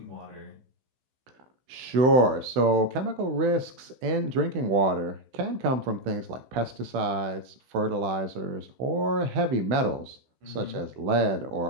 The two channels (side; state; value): left; late; 16 ms